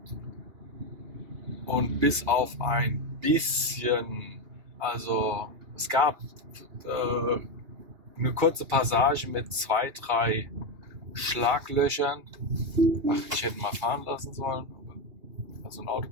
Und bis auf ein bisschen, also es gab eine kurze Passage mit 2, 3 Schlaglöchern. Ach, ich hätte mal fahren lassen sollen. Also ein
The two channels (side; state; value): left; late; 2.8 ms